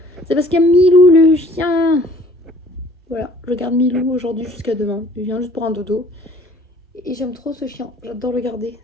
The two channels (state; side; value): normal; both; correlation 0.54